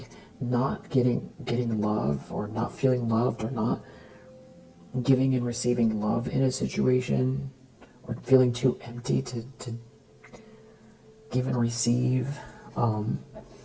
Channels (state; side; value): identical; both; correlation 1.00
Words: not getting love, or not feeling loved, or not giving and receiving love in a situation, or feeling too empty to give and receive,